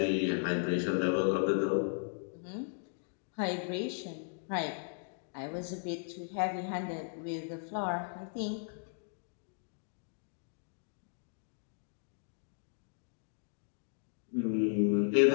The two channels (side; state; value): right; silent; digital silence